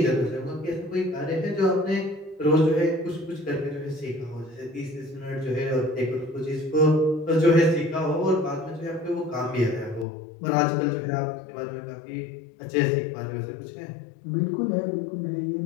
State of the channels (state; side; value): drops out; right; at 10.1 s